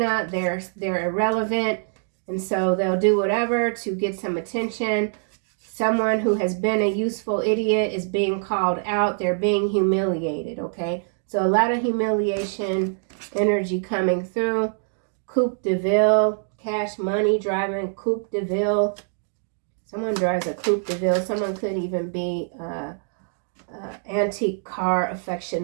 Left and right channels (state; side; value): silent; left; digital silence